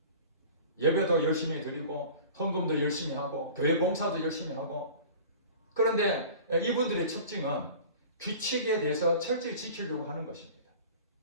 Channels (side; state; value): both; inverted; correlation -0.41